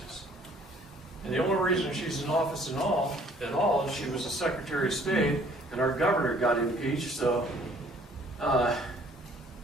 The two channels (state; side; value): normal; both; correlation 0.58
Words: And the only reason she's in office at all is she was a Secretary of State, and our governor got impeached, so